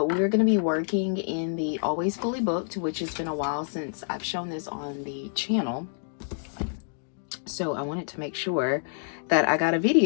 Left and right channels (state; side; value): silent; right; digital silence